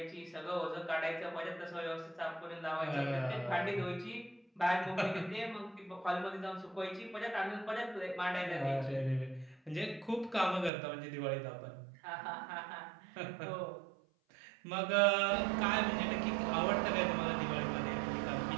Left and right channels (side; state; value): left; drops out; at 10.7 s